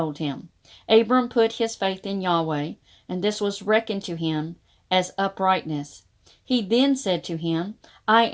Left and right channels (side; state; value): both; identical; correlation 1.00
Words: him. Abram put his faith in Yahweh, and this was reckoned to him as uprightness. He then said to him, I